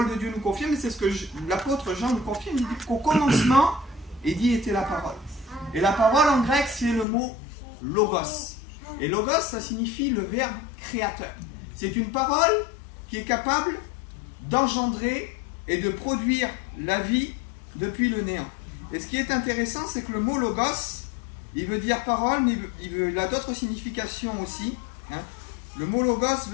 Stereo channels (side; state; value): right; drops out; at 7.1 s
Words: de Dieu nous confirme, et c'est ce que l'apôtre Jean nous confirme. Il dit qu'au commencement, il dit était la parole. Et la parole en grec, c'est le mot logos. Et logos, ça signifie le verbe créateur. C'est une parole qui est capable d'engendrer et de produire la vie depuis le néant. Et ce qui est intéressant, c'est que le mot logos, il veut dire parole, mais il a d'autres significations aussi. Le mot logos